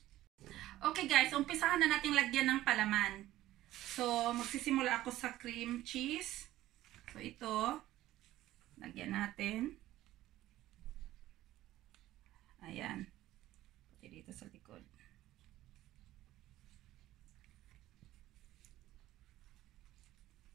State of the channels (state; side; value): quieter; left; 15.1 dB